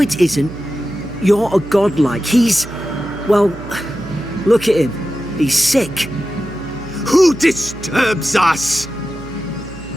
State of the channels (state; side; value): noise; right; hum, 15 dB below the sound